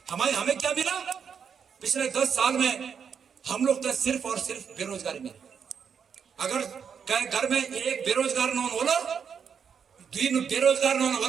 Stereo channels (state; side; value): quieter; left; 7.0 dB